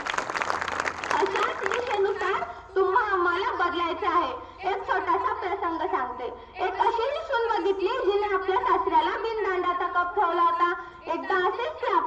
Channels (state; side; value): identical; both; correlation 1.00